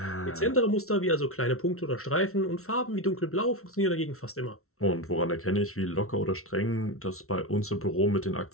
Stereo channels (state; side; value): late; right; 0.63 ms